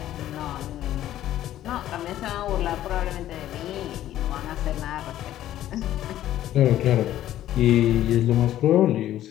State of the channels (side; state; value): right; quieter; 12.8 dB